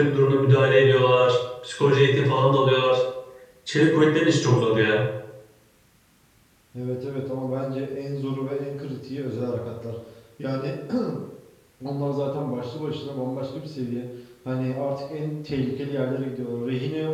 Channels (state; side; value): identical; both; correlation 1.00